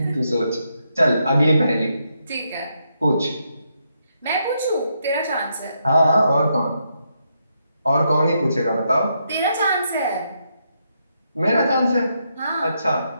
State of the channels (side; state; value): both; inverted; correlation -0.80